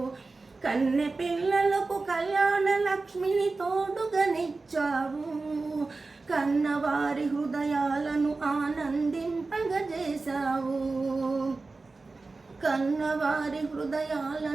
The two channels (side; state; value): left; quieter; 3.7 dB